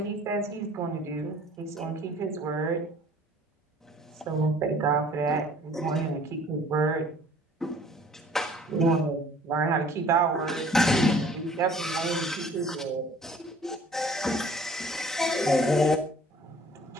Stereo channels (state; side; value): normal; both; correlation 0.53